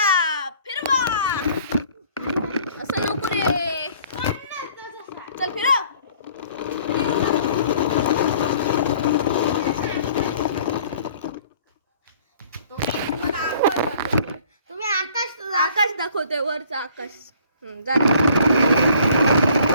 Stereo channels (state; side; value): inverted; both; correlation -0.55